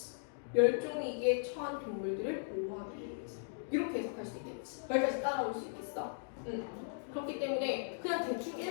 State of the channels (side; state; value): right; silent; digital silence